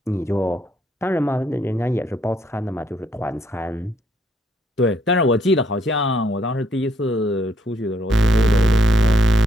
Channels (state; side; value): normal; both; correlation 0.72